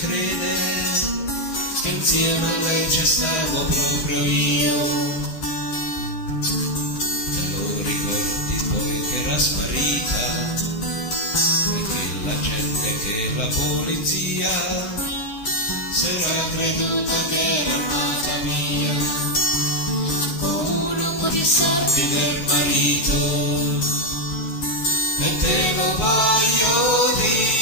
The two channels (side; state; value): right; late; 14 ms